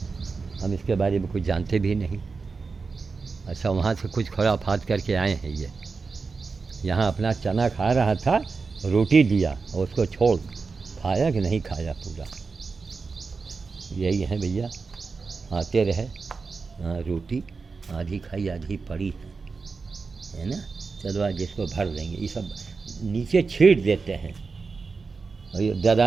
हम इसके बारे में कुछ जानते भी नहीं। अच्छा, वहाँ से कुछ खुराफात करके आए हैं ये, यहाँ अपना चना खा रहा था, रोटी दिया और उसको छोड़, खाया कि नहीं खाया पूरा। यही है भैया, आते रहे। रोटी आधी खाई आधी पड़ी है ना, चलो आज इसको भर देंगे। ये सब नीचे छीट देते हैं और ये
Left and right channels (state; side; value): quieter; left; 4.6 dB